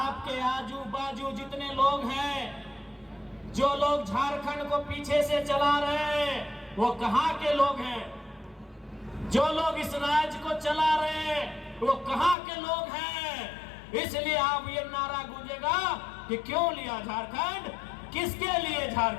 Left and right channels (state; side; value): drops out; right; at 12.4 s